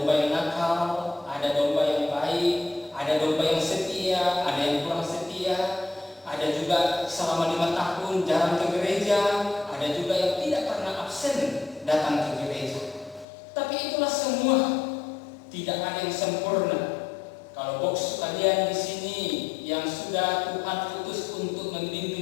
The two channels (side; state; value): right; drops out; at 13.2 s